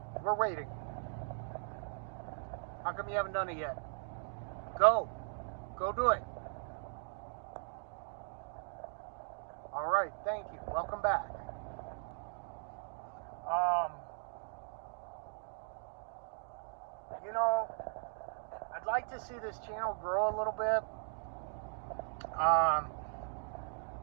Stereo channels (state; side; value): silent; left; digital silence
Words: We're waiting. How come you haven't done it yet? Go. Go do it. All right, thank you. Welcome back. You know, I'd like to see this channel grow a little bit.